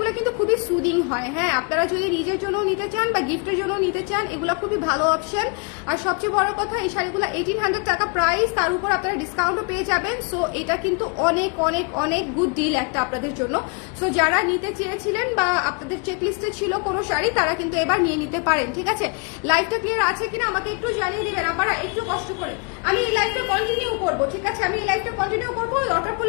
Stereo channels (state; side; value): quieter; right; 34.0 dB